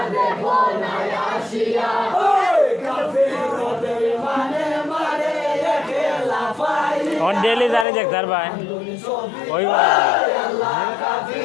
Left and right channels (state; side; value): drops out; right; at 7.9 s